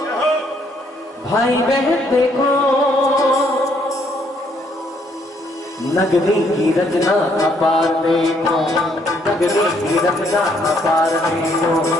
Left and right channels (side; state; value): both; normal; correlation 0.69